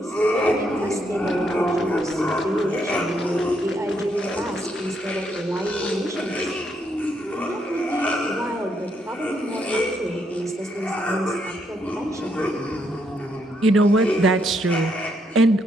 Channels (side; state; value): both; normal; correlation 0.75